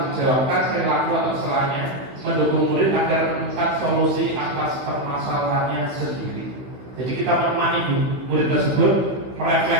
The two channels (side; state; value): left; late; 15 ms